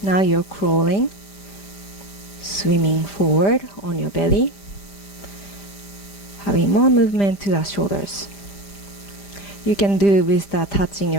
Now you're crawling, swimming forward on your belly, having more movement to the shoulders. You can do with the touching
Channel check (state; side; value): late; right; 5.0 ms